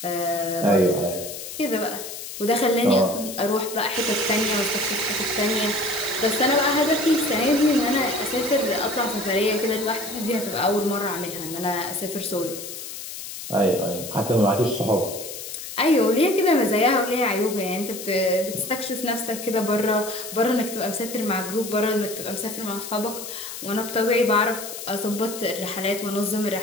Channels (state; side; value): noise; left; hiss, 10 dB below the sound